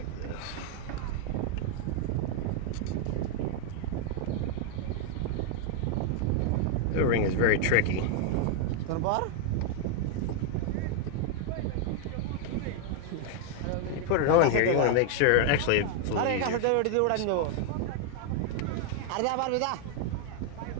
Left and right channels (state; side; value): different; both; correlation 0.00